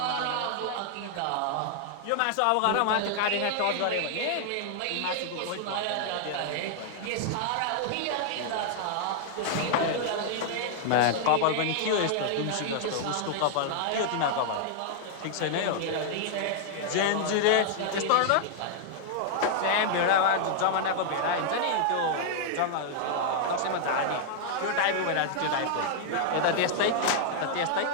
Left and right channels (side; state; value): both; different; correlation -0.01